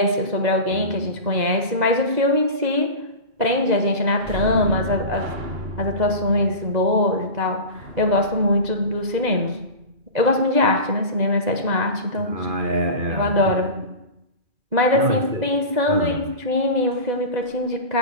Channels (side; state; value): left; late; 2.0 ms